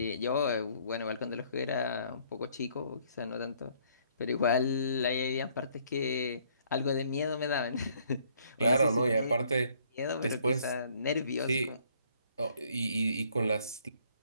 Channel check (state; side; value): inverted; both; correlation -0.64